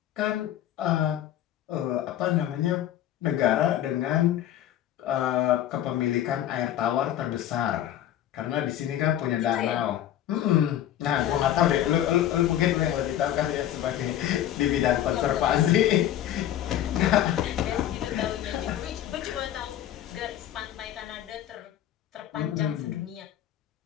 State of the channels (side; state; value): right; quieter; 11.7 dB